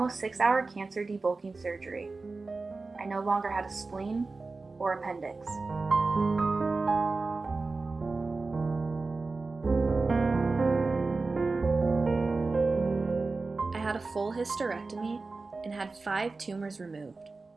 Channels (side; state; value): left; quieter; 3.8 dB